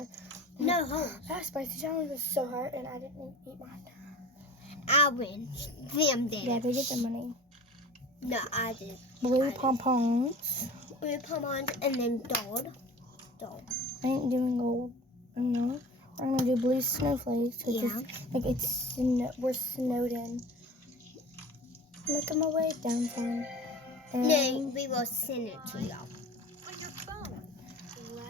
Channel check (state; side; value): normal; both; correlation 0.39